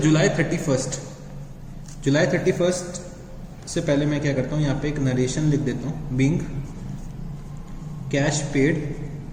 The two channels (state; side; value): identical; both; correlation 1.00